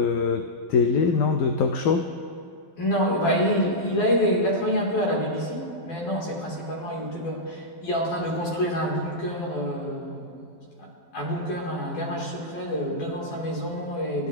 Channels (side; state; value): right; late; 12 ms